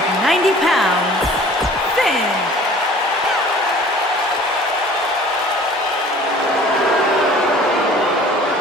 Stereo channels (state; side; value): normal; both; correlation 0.48